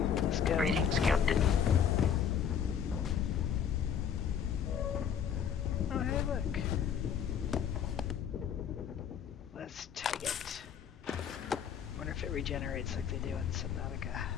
Let's go. Greetings, Captain. Oh, hey, look. Let's take it. Wonder if it regenerates like they do in Subnautica.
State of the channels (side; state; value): right; quieter; 8.0 dB